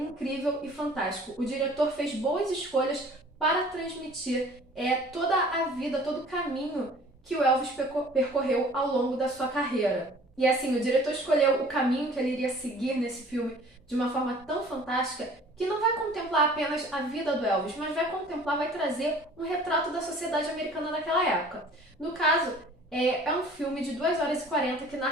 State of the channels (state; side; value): normal; both; correlation 0.49